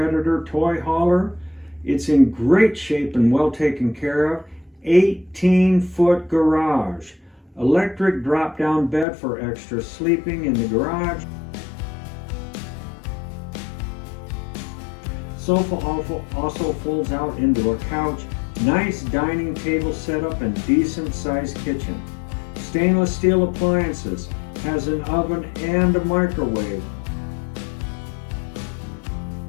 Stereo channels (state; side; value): drops out; right; at 9.1 s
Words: toy hauler. It's in great shape and well taken care of. 18-foot garage. Electric drop-down bed for extra sleeping in the garage. Sofa also folds out into a couch. Nice dining table setup and decent sized kitchen. Stainless steel appliances, has an oven and a microwave.